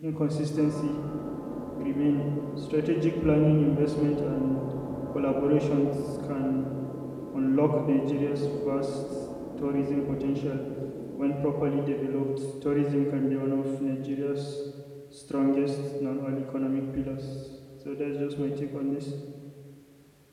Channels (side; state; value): both; identical; correlation 1.00